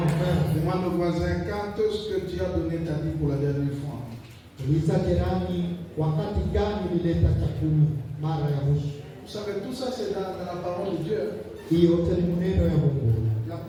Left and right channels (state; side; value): identical; both; correlation 1.00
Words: Demande au voisin, quand est-ce que tu as donné ta vie pour la dernière fois? Uliza jirani, wakati gani ulileta chakula mara ya mwisho? Vous savez, tout ça c'est dans la parole de Dieu. Hiyo yote ni maneno ya Mungu. La